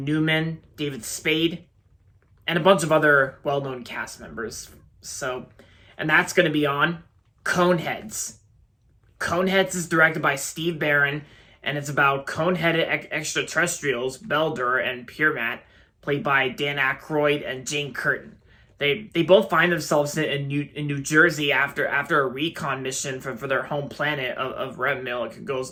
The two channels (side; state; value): both; identical; correlation 1.00